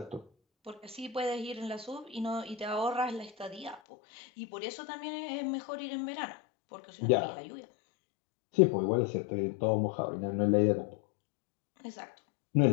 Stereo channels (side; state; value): right; drops out; at 3.8 s